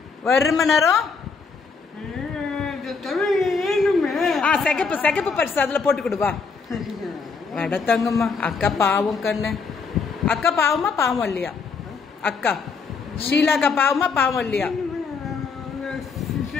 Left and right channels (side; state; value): right; quieter; 5.0 dB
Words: வரும நேரம் சிகப்பு பரிசு அதுல போட்டு கொடுவா. வட தங்கம்மா, அக்கா பாவம் கண்ணு. அக்கா பாவமா பாவம் இல்லையா? அக்கா ஷீலாக்கா பாவமா பாவம் இல்லையா?